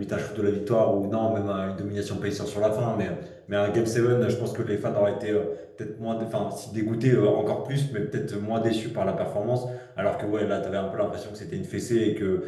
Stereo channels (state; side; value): identical; both; correlation 1.00